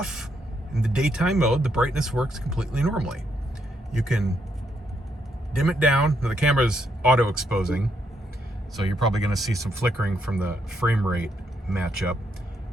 in the daytime mode, the brightness works completely normally. You can dim it down. Now, the camera's auto-exposing, so you're probably going to see some flickering from the frame rate matchup.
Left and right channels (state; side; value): normal; both; correlation 0.76